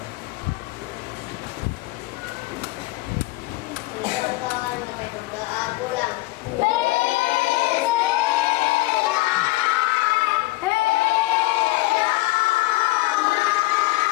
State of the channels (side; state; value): right; quieter; 20.2 dB